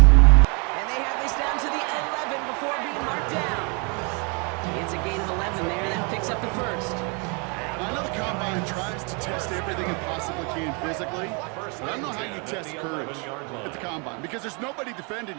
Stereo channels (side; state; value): left; quieter; 33.9 dB